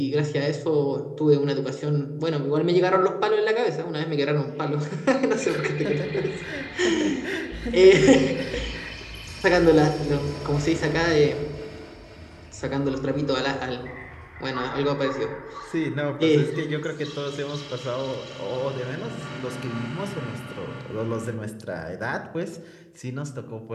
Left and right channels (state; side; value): identical; both; correlation 1.00